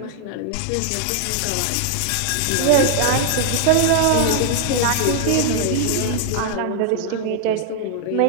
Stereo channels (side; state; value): both; different; correlation 0.00